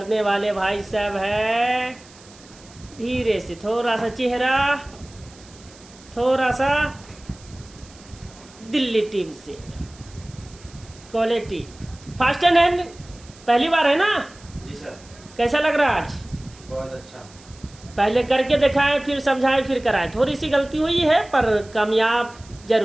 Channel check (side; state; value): right; noise; hiss, 23 dB below the sound